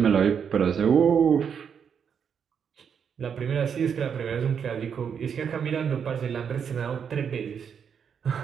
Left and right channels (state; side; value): quieter; left; 7.3 dB